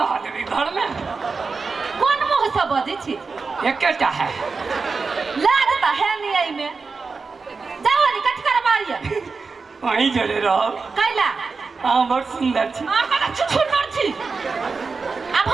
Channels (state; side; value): quieter; left; 4.5 dB